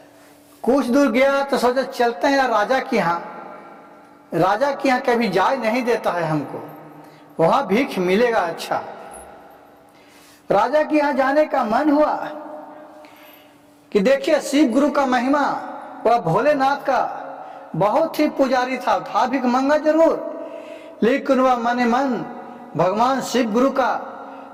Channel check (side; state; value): both; identical; correlation 1.00